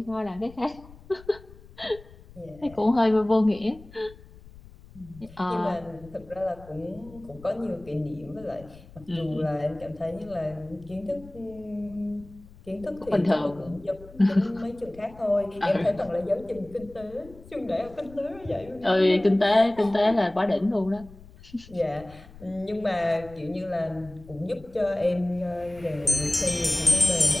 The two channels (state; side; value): noise; left; rumble, 21 dB below the sound